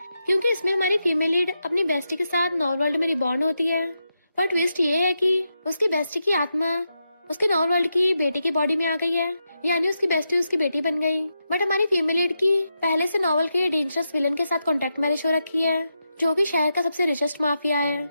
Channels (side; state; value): both; inverted; correlation -0.86